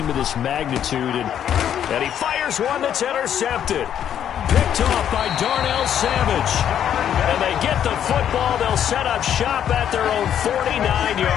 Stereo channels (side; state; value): right; quieter; 9.7 dB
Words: of this magnitude. And he fires one that's intercepted. Picked off by Darnell Savage. And they get the football. They'll set up shop at their own